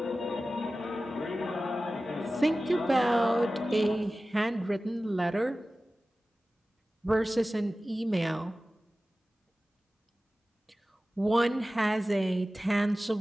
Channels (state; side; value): normal; both; correlation 0.96